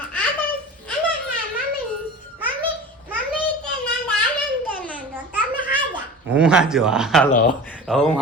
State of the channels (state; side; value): normal; both; correlation 0.36